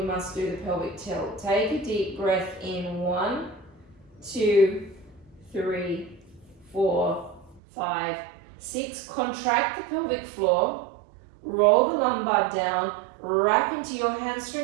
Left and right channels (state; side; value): drops out; left; at 7.6 s